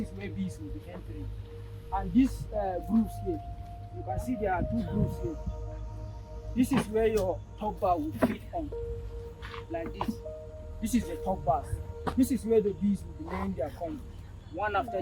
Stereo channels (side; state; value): both; identical; correlation 1.00